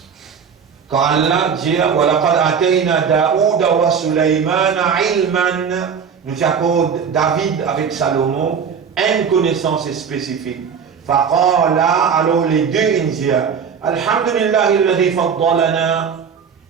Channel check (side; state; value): left; quieter; 6.8 dB